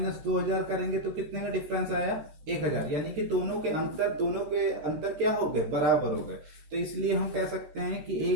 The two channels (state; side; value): late; left; 13 ms